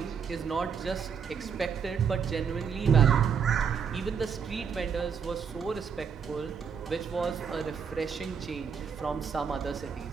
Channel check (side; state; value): left; quieter; 6.7 dB